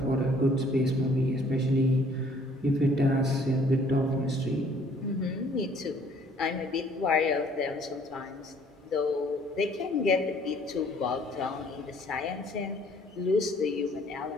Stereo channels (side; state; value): both; normal; correlation 0.59